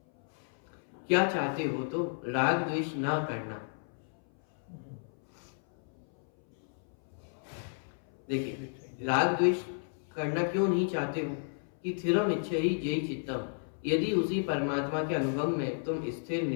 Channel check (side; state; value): right; silent; 56 dB below the other